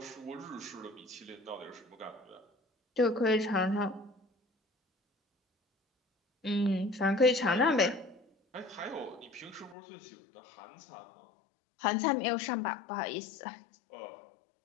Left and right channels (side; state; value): right; drops out; at 9.8 s